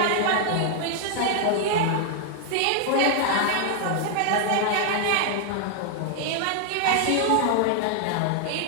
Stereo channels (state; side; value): different; both; correlation 0.00